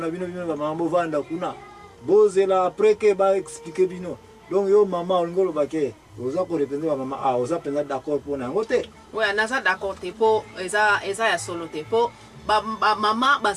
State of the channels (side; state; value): both; identical; correlation 1.00